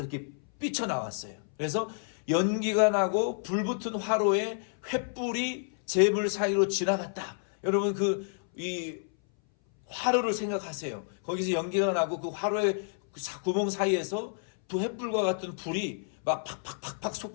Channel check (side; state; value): right; silent; 58 dB below the other